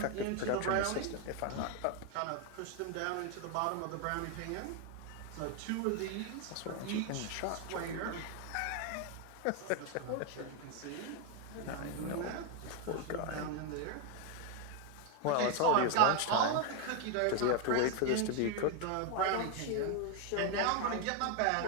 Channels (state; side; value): different; both; correlation 0.01